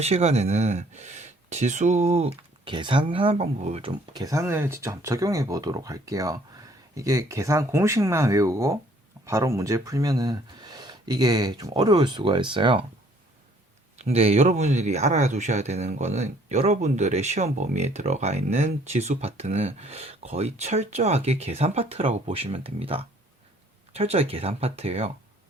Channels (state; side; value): normal; both; correlation 0.60